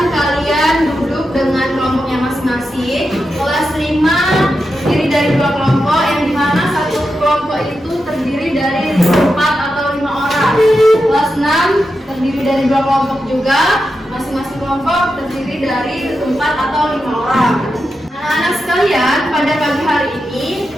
kalian duduk dengan kelompoknya masing-masing. Kelas 5 terdiri dari 2 kelompok, yang dimana satu kelompok itu terdiri dari 4 atau 5 orang. Kelas 6 terdiri dari 2 kelompok juga, masing-masing kelompok terdiri dari 4 atau 5 orang. Anak-anak sekalian, pada pagi hari ini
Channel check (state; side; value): normal; both; correlation 0.88